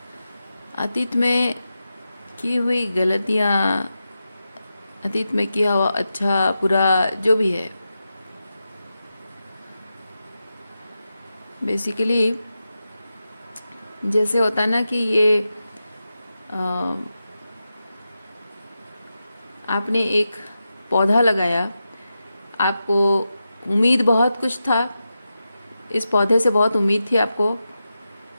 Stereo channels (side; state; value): both; inverted; correlation -0.90